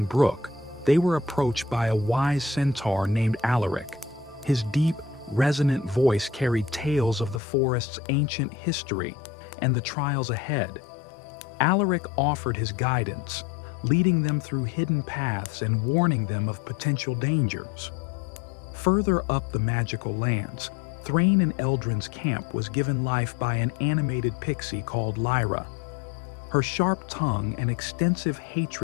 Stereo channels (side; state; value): right; drops out; at 7.4 s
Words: brook, they were approached by a wise centaur named Alaric. His deep, resonant voice carried tales of the forest's ancient history and the trials ahead. Alaric offered his guidance, leading them through hidden paths and warning them of potential dangers. Further up the magical lands, Thrain and Eldrin's camp was given life by an animated pixie called Lyra. Her sharp tongue and extensive